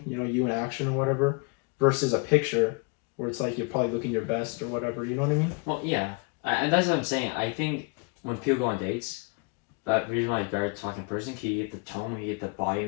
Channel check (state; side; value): quieter; right; 32.2 dB